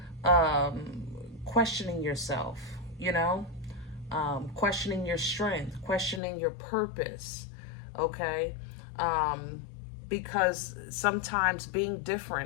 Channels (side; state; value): right; drops out; at 6.2 s